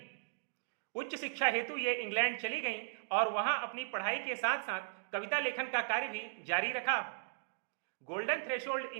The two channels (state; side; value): silent; left; digital silence